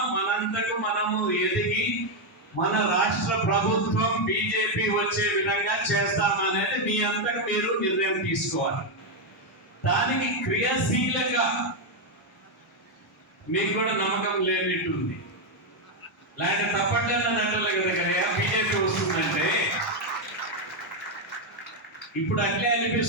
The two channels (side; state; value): both; normal; correlation 0.03